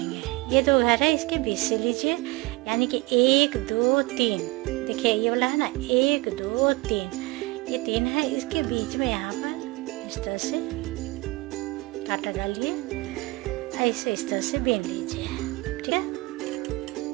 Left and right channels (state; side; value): quieter; left; 23.0 dB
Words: ये 2 घर है, इसके बीच से लीजिए, यानी कि 1 2 3। देखिए ये वाला है ना, 1 2 3, ये 3 है, इसके बीच में यहाँ पर इस तरह से कांटा डालिए, ऐसे इस तरह से बीन लीजिए। ठीक है,